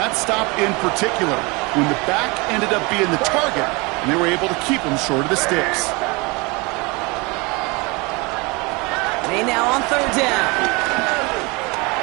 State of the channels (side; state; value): left; quieter; 26.9 dB